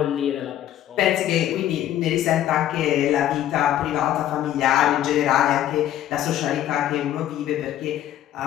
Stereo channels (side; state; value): right; quieter; 12.1 dB